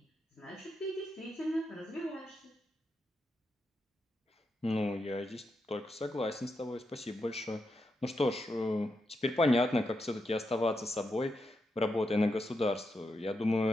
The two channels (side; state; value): both; normal; correlation 0.85